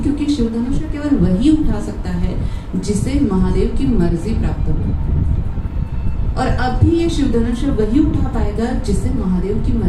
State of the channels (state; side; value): identical; both; correlation 1.00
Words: क्योंकि शिव धनुष्य केवल वही उठा सकता है जिसे महादेव की मर्जी प्राप्त हो। और अब भी ये शिव धनुष्य वही उठा पाएगा जिसे महादेव की